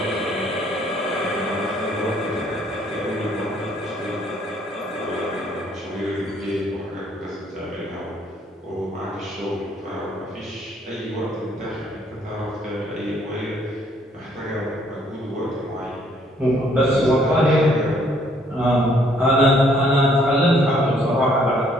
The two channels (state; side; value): normal; both; correlation 0.65